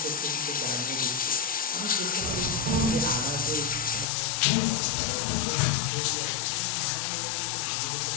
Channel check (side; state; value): right; drops out; at 4.0 s